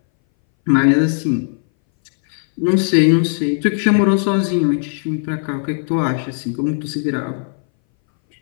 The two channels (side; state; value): right; silent; 62 dB below the other